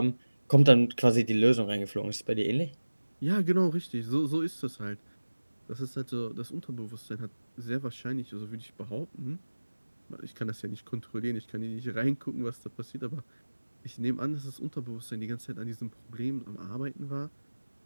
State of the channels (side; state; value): both; inverted; correlation -1.00